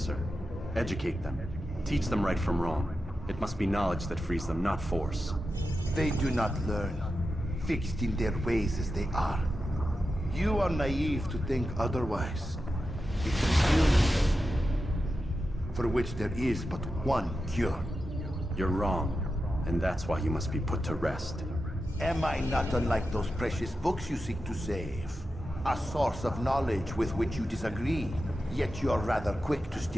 Educate them. Teach them right from wrong. It must be knowledge that frees them, not force. They do not learn. fixed in their ways as they are. You are naive to think otherwise. It's an illness for which there is but one cure. You're wrong, and that's why you must be put to rest. Am I not unlike those precious books you seek to save? A source of knowledge with which you disagree, yet you're rather quick to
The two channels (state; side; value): normal; both; correlation 0.91